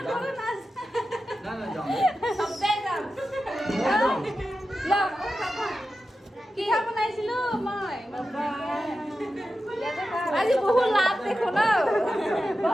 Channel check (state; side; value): normal; both; correlation 0.92